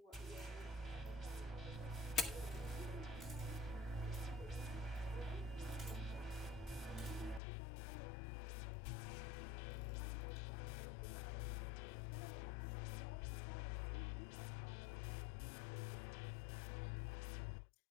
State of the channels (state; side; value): drops out; right; at 7.4 s